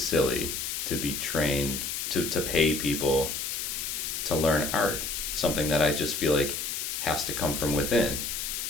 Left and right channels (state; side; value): noise; left; hiss, 3 dB below the sound